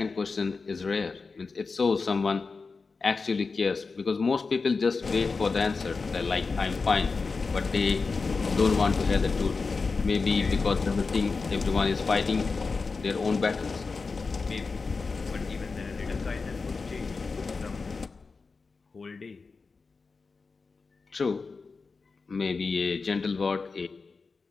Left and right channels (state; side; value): quieter; right; 4.4 dB